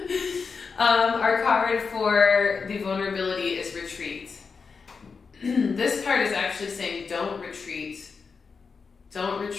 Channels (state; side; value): quieter; right; 5.2 dB